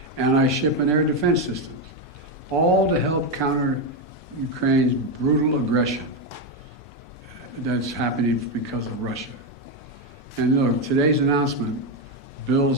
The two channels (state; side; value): normal; both; correlation 0.07